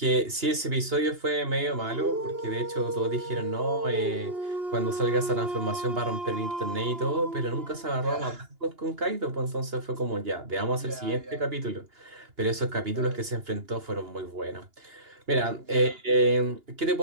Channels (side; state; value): left; late; 2.9 ms